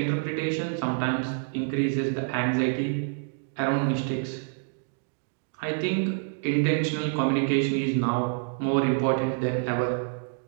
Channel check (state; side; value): silent; left; 60 dB below the other